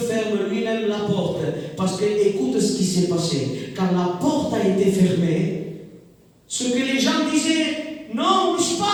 lui-même la porte parce que, écoute ce qui s'est passé. Quand la porte a été fermée, ce que les gens disaient, non, où je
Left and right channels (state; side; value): identical; both; correlation 1.00